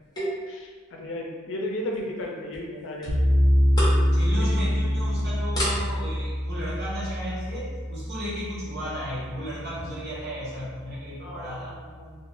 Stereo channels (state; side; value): normal; both; correlation 0.85